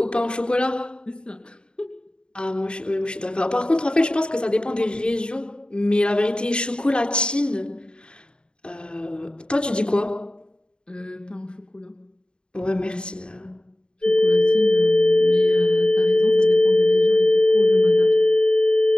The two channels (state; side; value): late; right; 0.051 ms